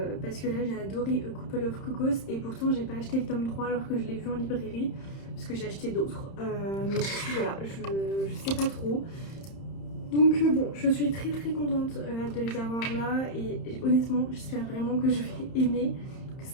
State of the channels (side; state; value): right; late; 31 ms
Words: parce que là j'ai adoré A Couple of Cocos et pourtant j'ai pas acheté le tome 3 alors que je l'ai vu en librairie parce que j'ai acheté d'autres, mais du coup voilà, je sais pas trop. Donc bon, je suis très contente de les avoir là et honnêtement j'espère vraiment que je vais aimer, que